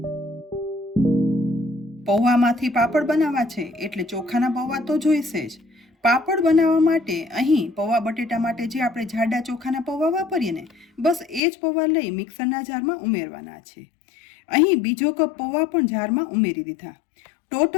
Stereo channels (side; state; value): right; drops out; at 11.4 s